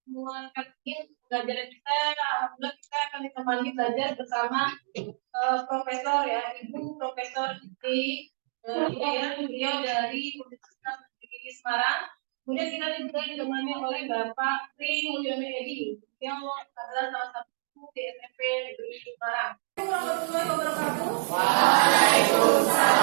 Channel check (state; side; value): silent; left; 59 dB below the other